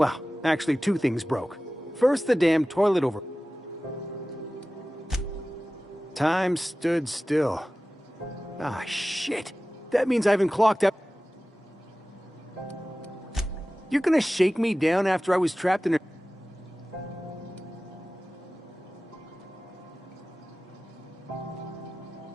actually 2 things broke. First, the damn toilet over... Time stood still. Ah, shit. That means I haven't clocked up. You're gonna shake me down after I was trapped in a...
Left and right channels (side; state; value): both; normal; correlation 0.96